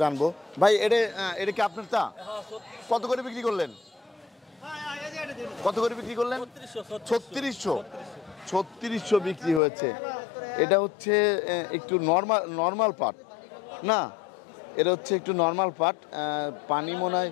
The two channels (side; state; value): right; drops out; at 9.6 s